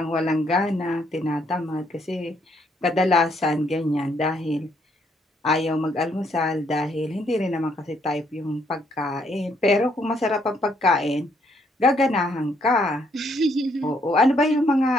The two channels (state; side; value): normal; both; correlation 0.70